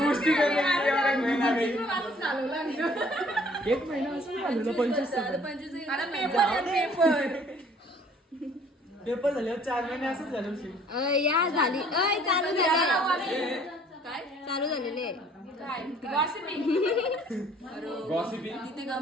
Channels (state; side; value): normal; both; correlation 0.57